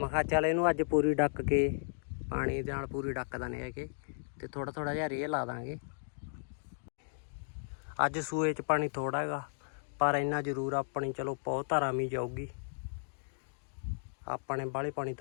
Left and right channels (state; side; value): silent; right; digital silence